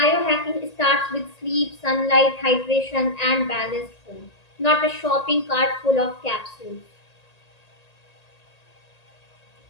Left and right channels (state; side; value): late; right; 1.8 ms